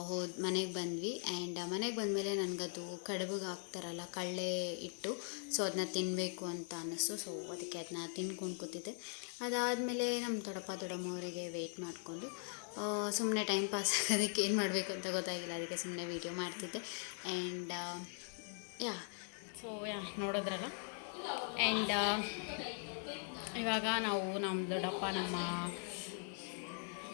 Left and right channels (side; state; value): right; silent; 51 dB below the other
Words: ಮನೆಗೆ ಬಂದ್ವಿ. ಆ್ಯಂಡ್ ಮನೆಗೆ ಬಂದಮೇಲೆ ನನಗದು ಕಡುಬಿಗೆ ಹಾಕ್ತಾರಲ್ಲ ಕಳ್ಳೆ ಇಟ್ಟು, ಸೊ ಅದನ್ನ ತಿನ್ನಬೇಕು ಅಂತ ಅನ್ನಿಸ್ತು. ಸೊ ಅದಕ್ಕೆ ಅದನ್ನ ತಿನ್ಕೊಂಡು ಕೂತಿದ್ದೆ. ಅದಾದಮೇಲೆ ನಮ್ಮ ದೊಡ್ಡಮ್ಮವರಿಗೆ ವೆಯ್ಟ್ ಮಾಡಿಕೊಂಡು ಸುಮ್ಮನೆ ಟೈಮ್ ಪಾಸ್ ಆಗೋದಕ್ಕೆ ಏನು ಮಾಡಬೇಕು ಅಂತ ಗೊತ್ತಾಗಿಲ್ಲ, ಅದಕ್ಕೆ ಸುಮ್ಮನೆ ವೀಡಿಯೋ ಮಾಡ್ತಿದ್ದೆ. ಆ್ಯಂಡ್ ನೋಡಿದ್ರಲ್ಲ. ಆ್ಯಂಡ್ ಇವಾಗ ನಾವು ನಮ್ಮ